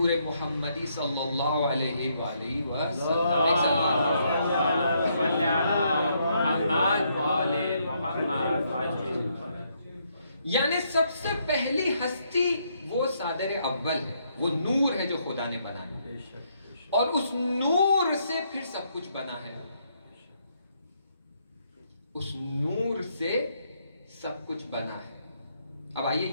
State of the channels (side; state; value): both; inverted; correlation -0.74